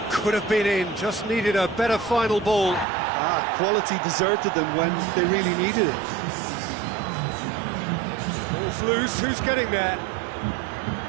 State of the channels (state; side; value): drops out; left; at 2.9 s